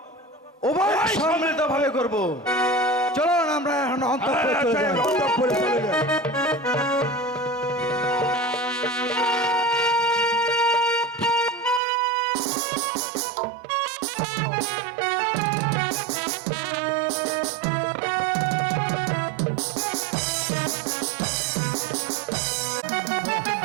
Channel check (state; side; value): drops out; left; at 11.8 s